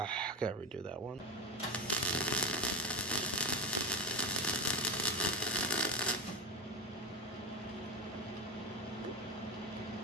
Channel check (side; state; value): both; normal; correlation 0.18